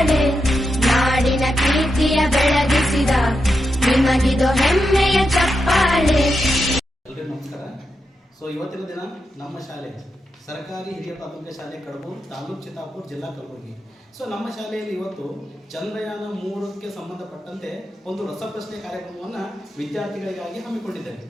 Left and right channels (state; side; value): normal; both; correlation 0.86